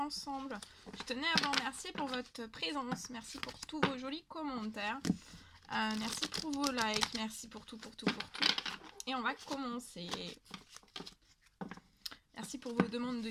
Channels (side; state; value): both; identical; correlation 1.00